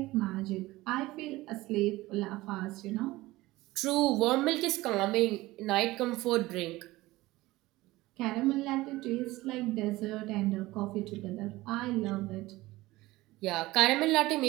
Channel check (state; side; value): quieter; left; 18.8 dB